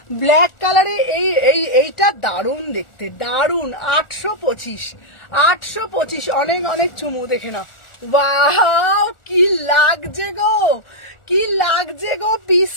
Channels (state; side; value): late; right; 1.4 ms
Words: ব্ল্যাক কালারে এইটা দারুণ দেখতে, দারুণ, 825, 825, অনেক অনেক চুমু, দেখে নাও ওয়াও কি লাগছে গো, কি লাগছে গো